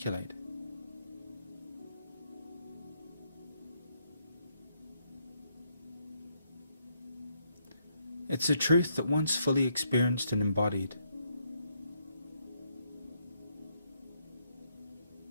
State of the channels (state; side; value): inverted; both; correlation -0.74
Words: It's a truth that once fully experienced and embodied,